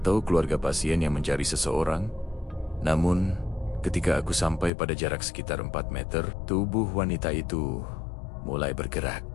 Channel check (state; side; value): drops out; right; at 4.7 s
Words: keluarga pasien yang mencari seseorang. Namun, ketika aku sampai pada jarak sekitar 4 meter, tubuh wanita itu mulai bergerak.